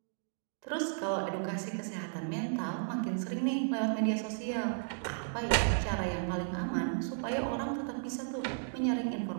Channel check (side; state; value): left; silent; digital silence